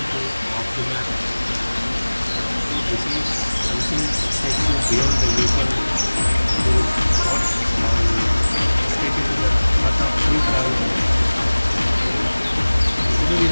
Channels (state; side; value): inverted; both; correlation -1.00